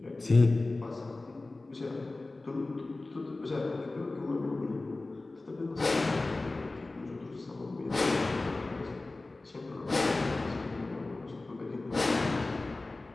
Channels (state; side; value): quieter; right; 3.1 dB